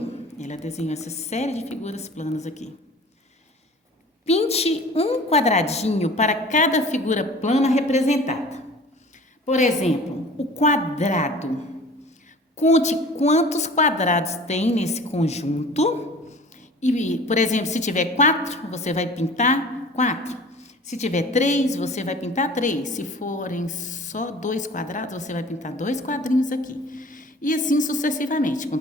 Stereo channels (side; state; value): both; normal; correlation 0.44